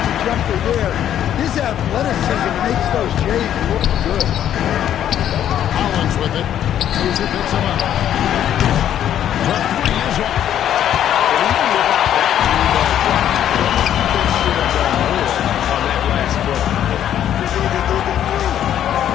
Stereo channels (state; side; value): quieter; right; 10.6 dB